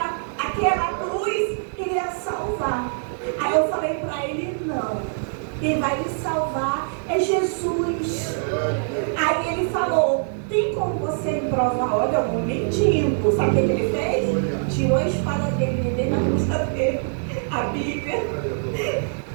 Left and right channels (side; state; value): left; silent; digital silence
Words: cruz iria salvar. Aí eu falei para ele, não. Quem vai lhe salvar é Jesus. povo você me provar, olha, eu vou mentindo. Sabe o que ele fez? Tirou a espada dele, dele na bolsa dele, a Bíblia.